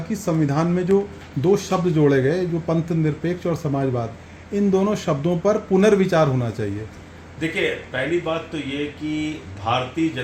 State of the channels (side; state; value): both; identical; correlation 1.00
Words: संविधान में जो दो शब्द जोड़े गए, जो पंथ निरपेक्ष और समाजवाद, इन दोनों शब्दों पर पुनर्विचार होना चाहिए। देखिए, पहली बात तो ये कि भारतीय